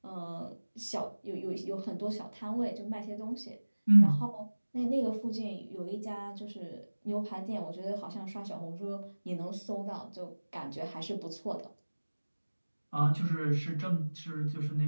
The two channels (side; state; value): both; inverted; correlation -1.00